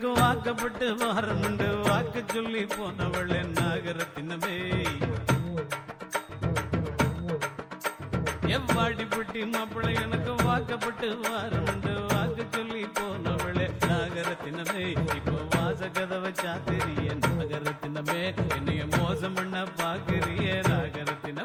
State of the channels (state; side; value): identical; both; correlation 1.00